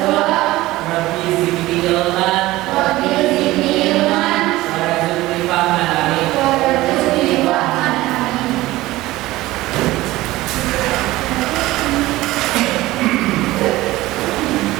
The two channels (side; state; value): left; quieter; 17.9 dB